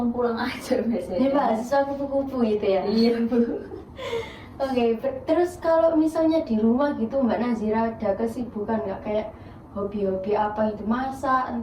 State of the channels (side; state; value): both; identical; correlation 1.00